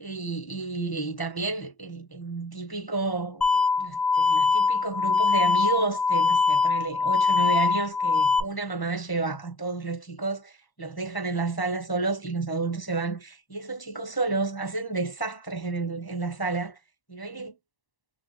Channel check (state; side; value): late; right; 1.0 ms